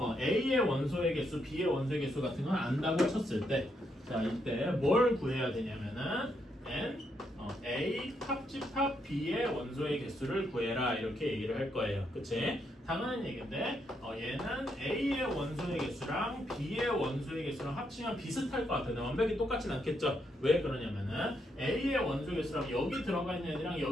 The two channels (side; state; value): both; normal; correlation 0.78